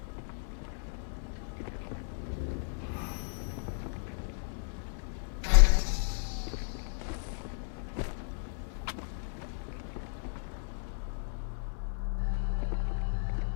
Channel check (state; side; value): silent; right; digital silence